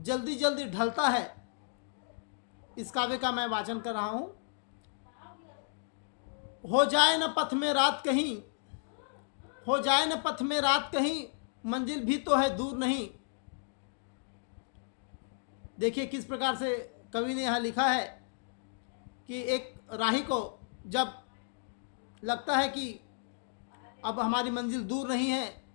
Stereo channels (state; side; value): silent; right; digital silence